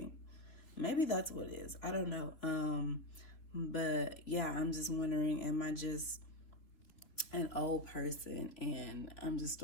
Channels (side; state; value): right; late; 3.1 ms